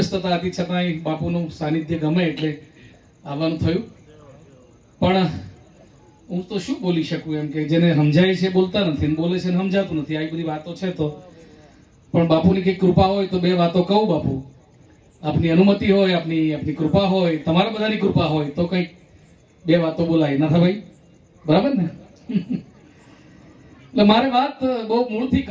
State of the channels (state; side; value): identical; both; correlation 1.00